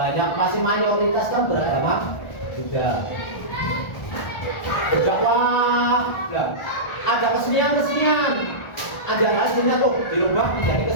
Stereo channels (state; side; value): late; right; 1.4 ms